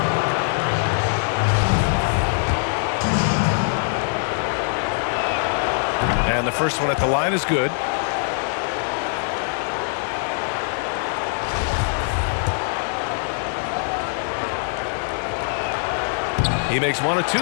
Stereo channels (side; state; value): right; silent; 63 dB below the other